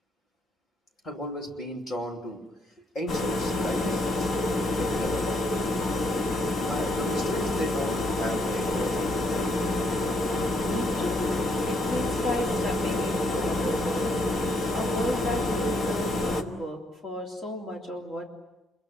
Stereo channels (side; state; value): both; normal; correlation 0.72